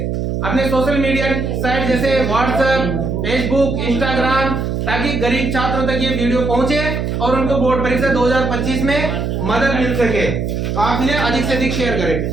अपने सोशल मीडिया साइट जैसे व्हाट्सएप, फेसबुक, इंस्टाग्राम, ताकि गरीब छात्रों तक ये वीडियो पहुंचे और उनको बोर्ड परीक्षा 2025 में मदद मिल सके। तो आप इन्हें अधिक से अधिक शेयर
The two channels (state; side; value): noise; right; hum, 2 dB below the sound